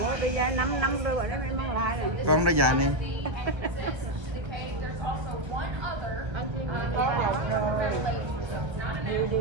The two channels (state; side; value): late; left; 1.3 ms